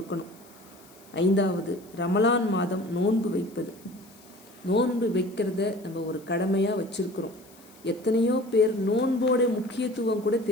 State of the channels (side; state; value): left; noise; hiss, 25 dB below the sound